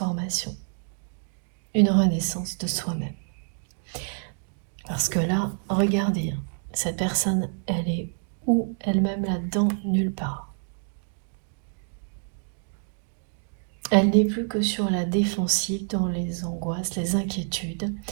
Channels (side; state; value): left; silent; 60 dB below the other